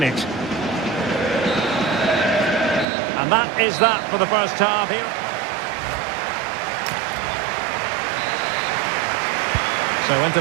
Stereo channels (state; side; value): drops out; left; at 2.9 s